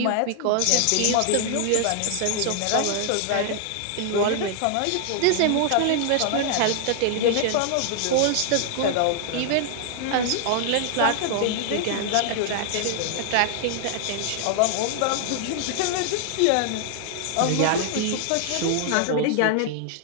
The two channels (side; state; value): both; different; correlation 0.00